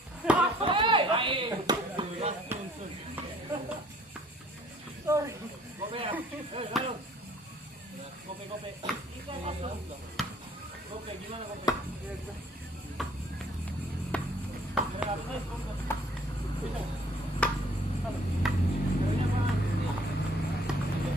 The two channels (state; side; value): normal; both; correlation 0.58